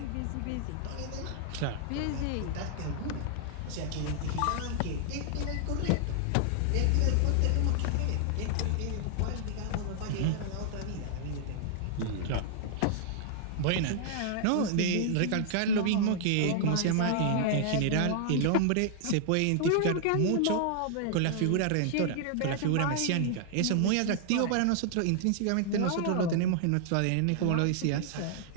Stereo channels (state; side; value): different; both; correlation -0.01